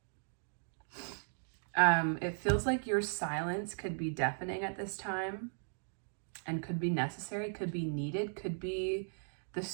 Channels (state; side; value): silent; left; digital silence